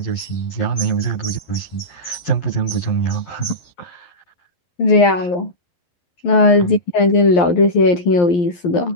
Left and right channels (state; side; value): late; right; 11 ms